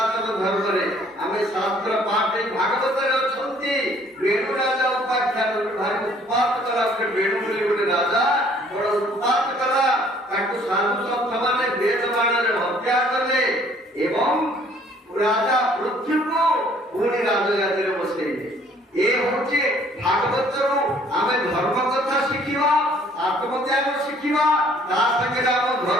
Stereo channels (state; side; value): normal; both; correlation 0.59